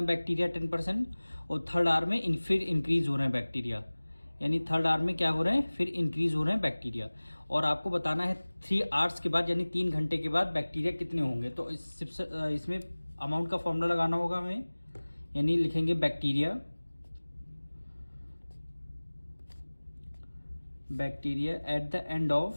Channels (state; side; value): inverted; both; correlation -1.00